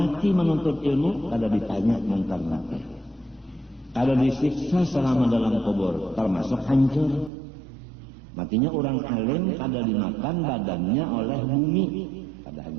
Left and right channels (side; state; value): left; drops out; at 7.3 s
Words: menuntut ilmu ada ditanya mungkar nakir. Ada disiksa selama dalam kubur termasuk hancur. Matinya orang alim ada dimakan badannya oleh bumi, ada